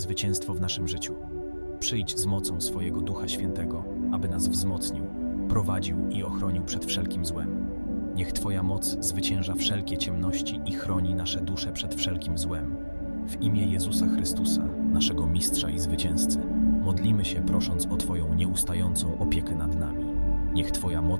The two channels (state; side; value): inverted; both; correlation -1.00